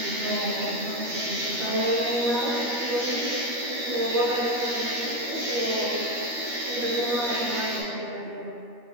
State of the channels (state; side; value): late; left; 13 ms